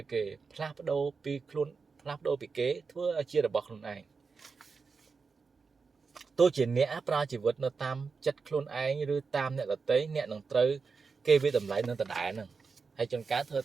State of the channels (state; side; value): quieter; left; 4.9 dB